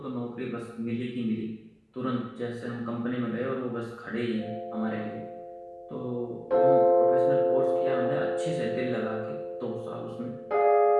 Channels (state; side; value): identical; both; correlation 1.00